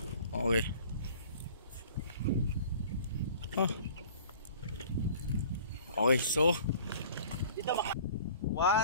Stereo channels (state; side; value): inverted; both; correlation -0.48